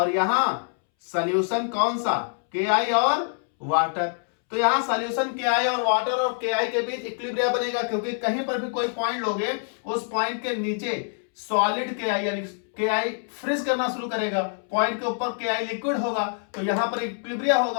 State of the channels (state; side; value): silent; right; 61 dB below the other